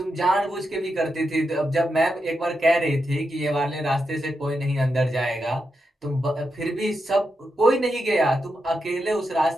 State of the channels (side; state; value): both; normal; correlation 0.86